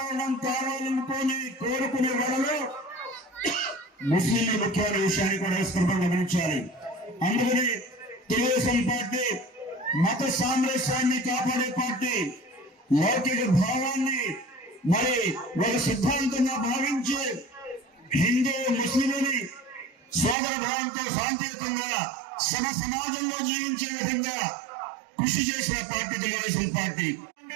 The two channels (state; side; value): drops out; left; at 20.4 s